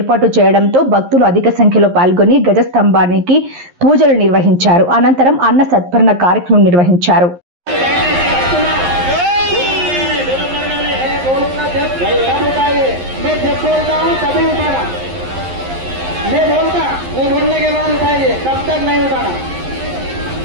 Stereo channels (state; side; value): late; left; 11 ms